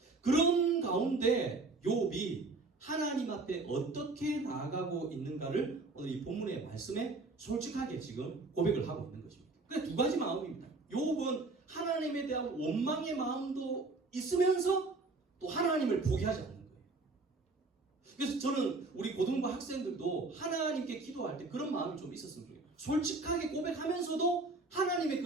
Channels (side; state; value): left; quieter; 3.5 dB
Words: 그런 가운데 욥이 하나님 앞에 어떻게 나아가고 있는가를 오늘 이 본문의 말씀에 솔직하게 지금 고백을 하고 있는 것입니다. 그래서 두 가지 마음입니다. 욥은 하나님에 대한 원망의 마음도 있으면서 또 하나님을 포기하지 않는 거예요. 그래서 저는 우리 고등부 학생들도 하나님께 기도할 때 그런 마음이 좀 있었으면 좋겠어요. 솔직하게 고백하면서도 하나님의